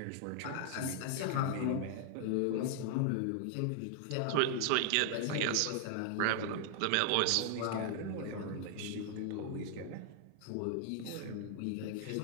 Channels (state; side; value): different; both; correlation -0.01